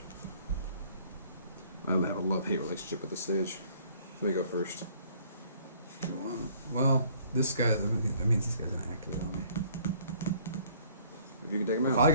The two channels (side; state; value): both; inverted; correlation -0.58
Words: I have a love-hate relationship with this stage. Let me go first. Well, this guy, that means this guy's going to activate on me. If you can take him out. If I